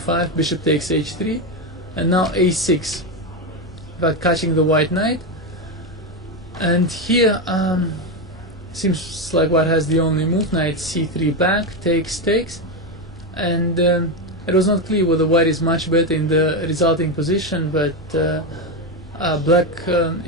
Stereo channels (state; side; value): normal; both; correlation 0.11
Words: bishop takes h3, and now a6, but catching the white knight. And here seems like white has the only move. Knight c3 back, takes, and it was not clear whether white is much better in the resulting position, but black